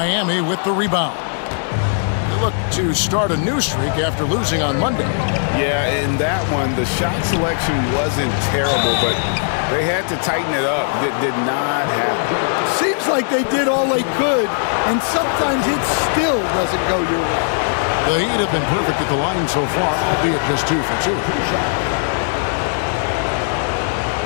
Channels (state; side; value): silent; right; digital silence